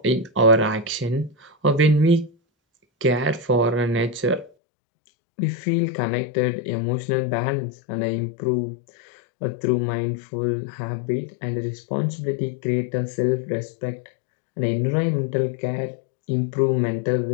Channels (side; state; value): right; drops out; at 4.5 s